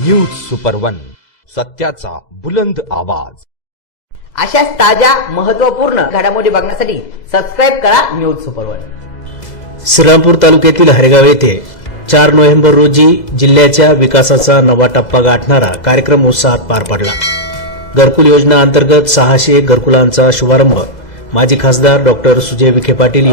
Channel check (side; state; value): right; late; 2.0 ms